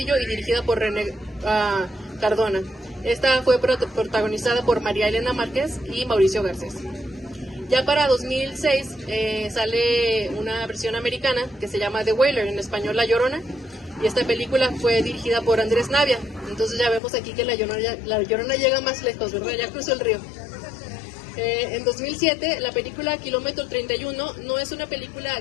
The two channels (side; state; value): right; drops out; at 17.0 s